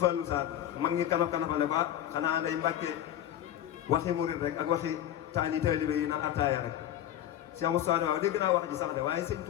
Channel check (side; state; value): right; quieter; 11.5 dB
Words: Sarr mag ñi kanaf kanafale ba xanaa day Mbàkke waxi murit rek ak waxi taalibe yi naan attaaya rek Cheikh Moustapha waaw dégg naa wax ji sax de waaye sëñ